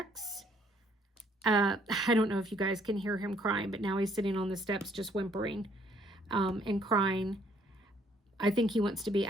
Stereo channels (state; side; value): normal; both; correlation 0.65